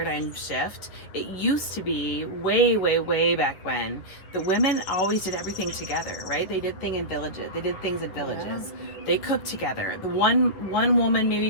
shift. It used to be way back when the women always did everything together, right? They did things in villages. Yeah. They cooked together. The one woman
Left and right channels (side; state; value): right; late; 10 ms